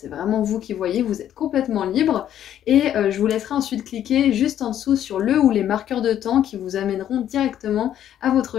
vraiment vous qui voyez, vous êtes complètement libre. Et je vous laisserai ensuite cliquer juste en dessous sur le ou les marqueurs de temps qui vous amèneront directement à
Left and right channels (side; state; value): right; quieter; 10.8 dB